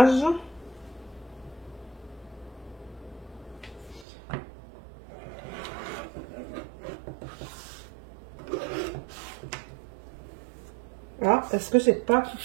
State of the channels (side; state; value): left; drops out; at 4.0 s